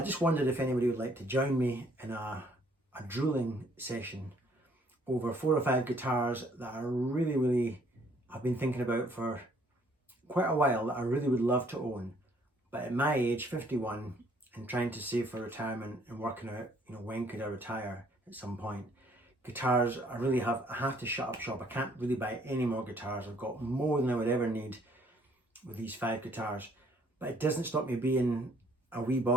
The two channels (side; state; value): both; normal; correlation 0.63